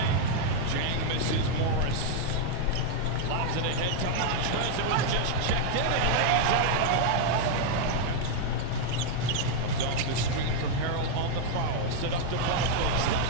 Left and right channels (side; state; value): both; different; correlation 0.00